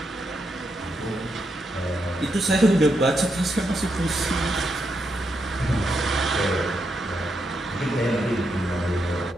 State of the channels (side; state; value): both; normal; correlation 0.82